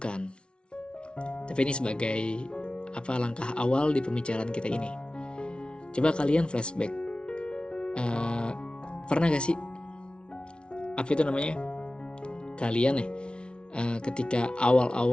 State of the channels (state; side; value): late; right; 0.057 ms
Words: Tapi ini sebagai langkah awal di pembicaraan kita ini. Coba kalian flashback. Pernah gak sih kalian ketika